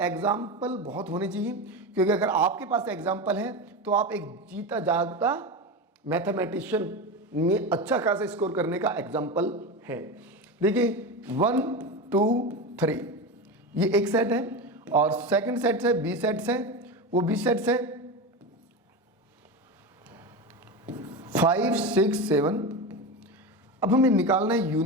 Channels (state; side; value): normal; both; correlation 0.21